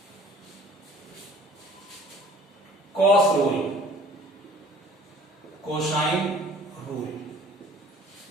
कॉस रूल, कोसाइन रूल,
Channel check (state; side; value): normal; both; correlation 0.50